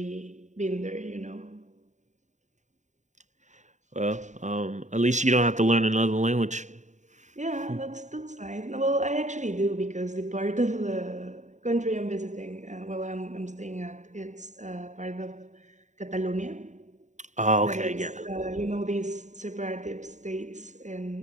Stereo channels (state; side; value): late; left; 0.35 ms